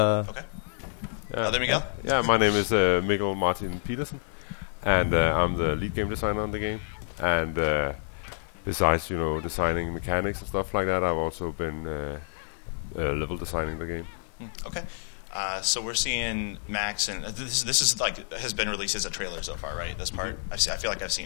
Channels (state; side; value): silent; right; digital silence